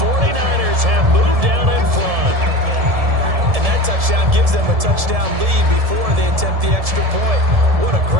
have moved down in front. And that touchdown gives them a touchdown lead before they attempt the extra point. What a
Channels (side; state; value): left; late; 1.7 ms